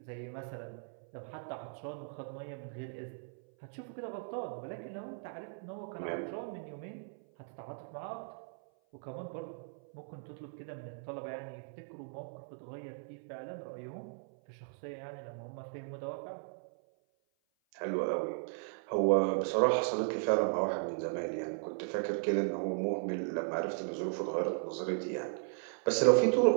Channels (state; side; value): silent; left; 53 dB below the other